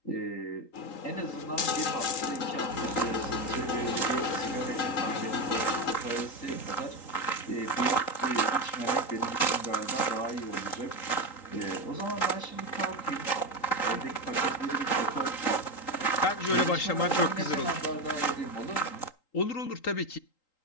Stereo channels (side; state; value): right; late; 3.8 ms